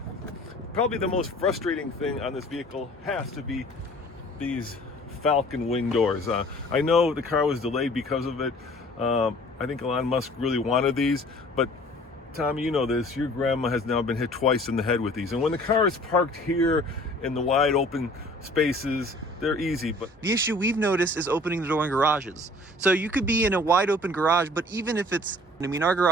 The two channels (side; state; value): both; normal; correlation 0.51